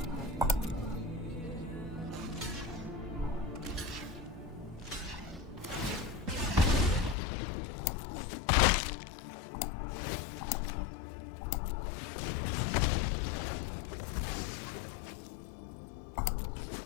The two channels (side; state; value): right; drops out; at 7.2 s